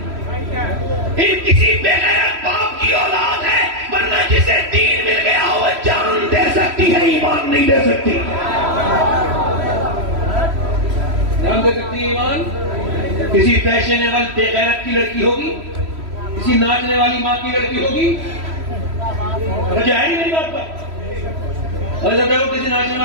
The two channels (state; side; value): late; left; 3.1 ms